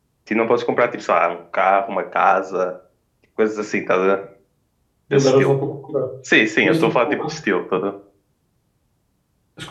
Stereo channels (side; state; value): both; identical; correlation 1.00